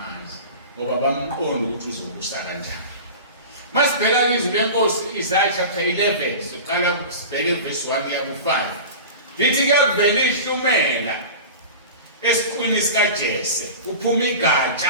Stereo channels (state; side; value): inverted; both; correlation -0.32